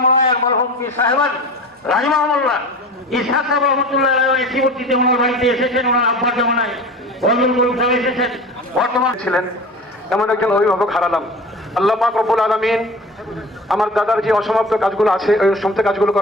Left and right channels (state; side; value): normal; both; correlation 0.36